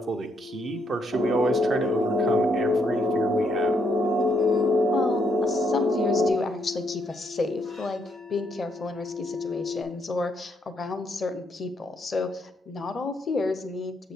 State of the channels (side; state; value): both; normal; correlation 0.75